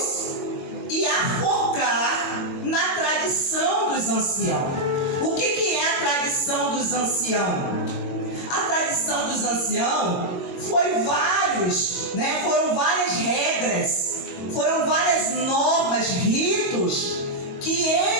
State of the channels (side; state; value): right; late; 21 ms